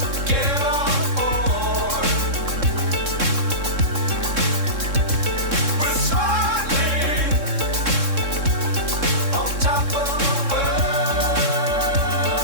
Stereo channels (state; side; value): late; left; 3.6 ms